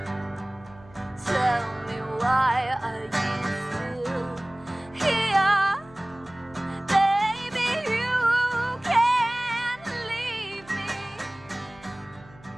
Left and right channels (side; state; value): left; noise; hum, 23 dB below the sound